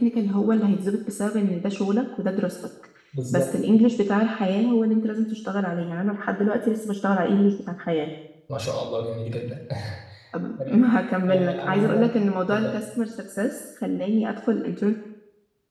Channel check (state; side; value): identical; both; correlation 1.00